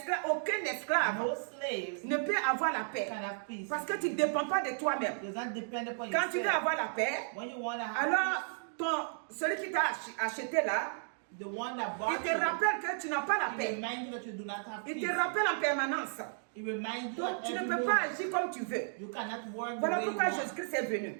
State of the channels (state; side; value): silent; left; digital silence